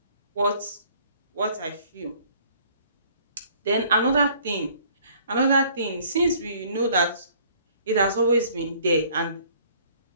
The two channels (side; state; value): both; inverted; correlation -0.57